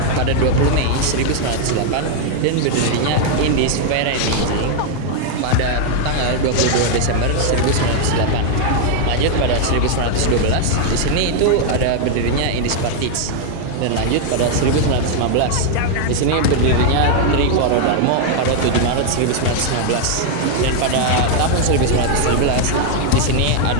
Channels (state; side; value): different; both; correlation 0.00